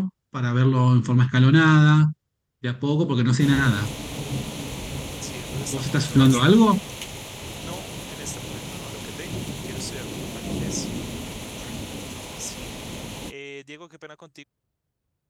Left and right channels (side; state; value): both; identical; correlation 1.00